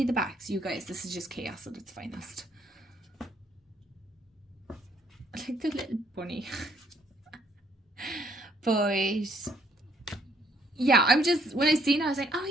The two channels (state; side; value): normal; both; correlation 0.67